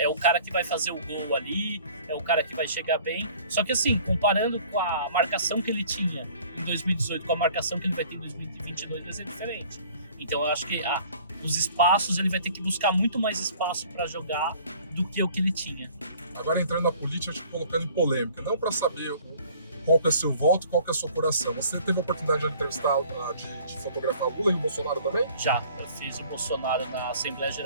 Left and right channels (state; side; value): inverted; both; correlation -0.52